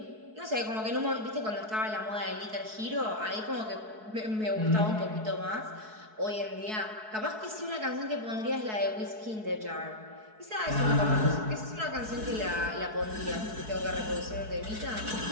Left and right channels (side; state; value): left; late; 4.6 ms